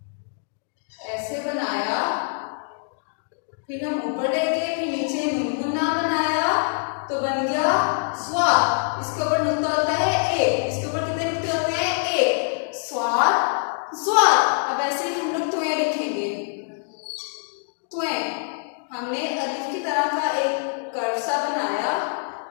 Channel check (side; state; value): right; silent; 62 dB below the other